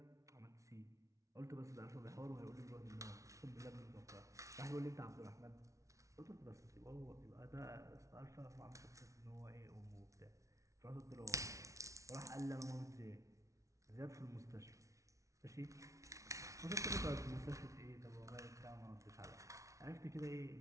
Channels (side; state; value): left; late; 0.15 ms